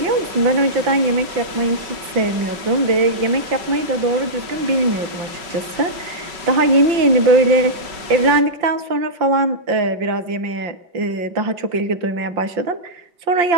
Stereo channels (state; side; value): late; left; 5.3 ms